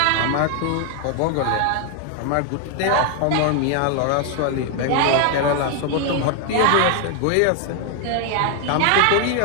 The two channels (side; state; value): both; different; correlation 0.00